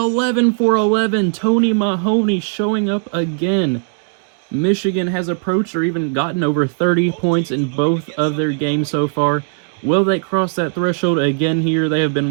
for 11. Tony Mahoney showing up again. Michigan has approached or even gotten over 30 points in both of their games so far. Will they cross that threshold again here? They have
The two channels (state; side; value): silent; left; digital silence